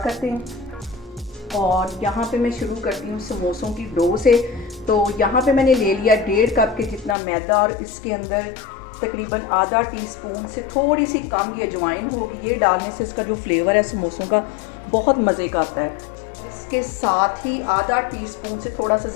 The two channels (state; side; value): drops out; right; at 7.2 s